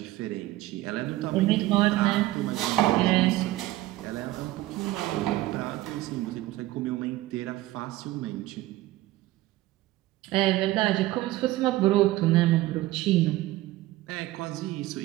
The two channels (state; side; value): quieter; left; 16.8 dB